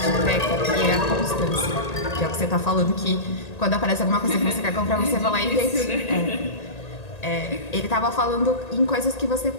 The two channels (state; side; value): late; right; 1.8 ms